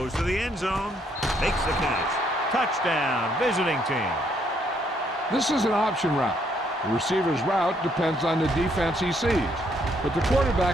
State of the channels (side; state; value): both; normal; correlation 0.71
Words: to the end zone, makes the catch. Touchdown, visiting team. This is an option route. The receiver's route depends on the defense he sees, but the